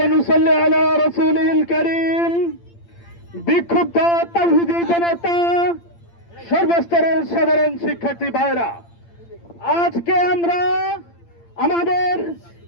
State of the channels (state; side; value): late; right; 8.8 ms